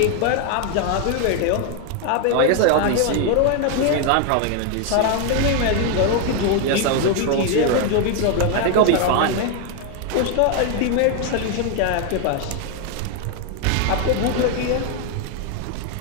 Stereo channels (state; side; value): different; both; correlation 0.01